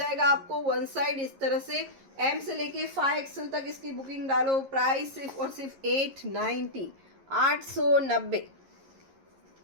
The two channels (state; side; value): late; left; 11 ms